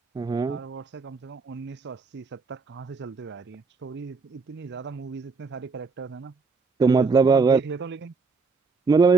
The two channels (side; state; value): left; quieter; 4.4 dB